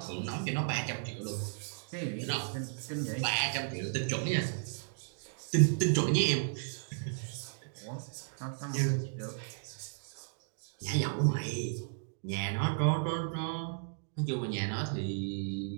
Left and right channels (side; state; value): left; silent; digital silence